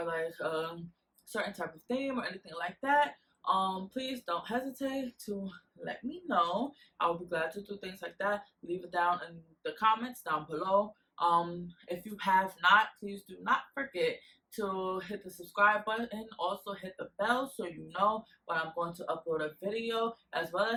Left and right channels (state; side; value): identical; both; correlation 1.00